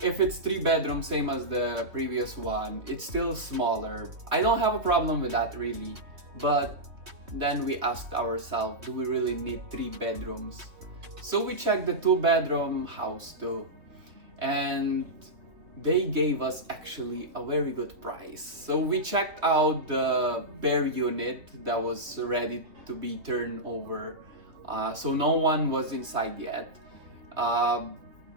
if it's 3 bedroom, same as the previous one, it's still smaller. I don't have a problem with that really, but then we asked ourselves, do we really need 3 bedrooms? So we checked the 2 bedroom house too, and they gave us actually a very good price. So we checked out the bare unit that was ready to be turned over. So no one was inside yet.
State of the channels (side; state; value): left; late; 2.9 ms